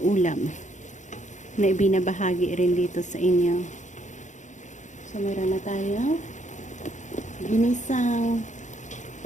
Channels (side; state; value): right; late; 0.35 ms